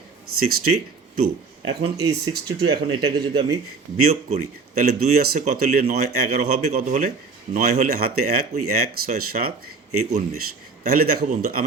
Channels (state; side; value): quieter; left; 4.4 dB